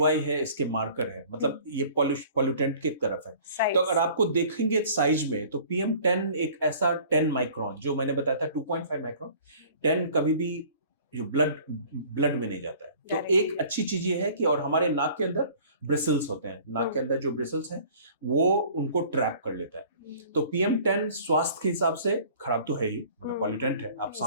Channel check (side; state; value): both; inverted; correlation -0.49